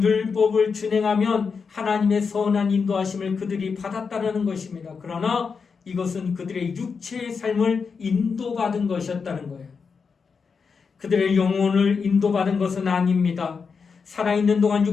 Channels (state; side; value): quieter; right; 5.5 dB